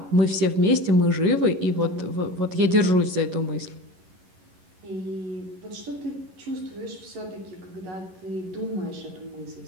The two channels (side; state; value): left; late; 11 ms